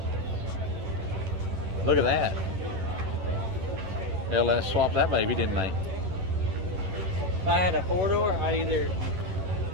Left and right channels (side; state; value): left; late; 11 ms